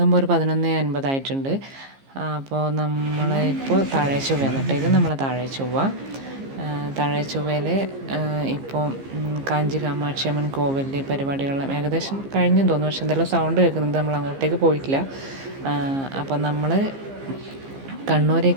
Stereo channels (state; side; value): late; left; 15 ms